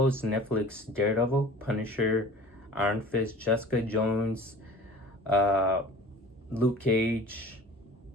Netflix Daredevil, Punisher, Iron Fist, Jessica Jones, uh, Luke Cage,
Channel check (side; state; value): both; normal; correlation 0.44